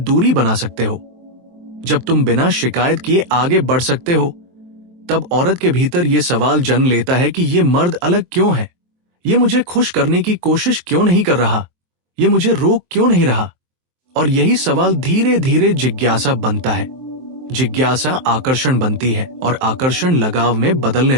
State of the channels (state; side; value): late; left; 23 ms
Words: बना सकते हो, जब तुम बिना शिकायत किए आगे बढ़ सकते हो, तब औरत के भीतर यह सवाल जन्म लेता है कि ये मर्द अलग क्यों है, ये मुझे खुश करने की कोशिश क्यों नहीं कर रहा, ये मुझे रोक क्यों नहीं रहा। और यही सवाल धीरे धीरे जिज्ञासा बनता है। जिज्ञासा आकर्षण बनती है और आकर्षण लगाव में बदलने